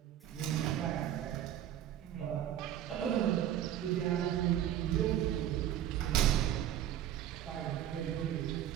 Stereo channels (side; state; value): left; quieter; 11.3 dB